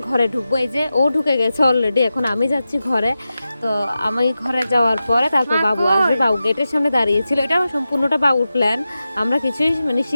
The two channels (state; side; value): inverted; both; correlation -0.93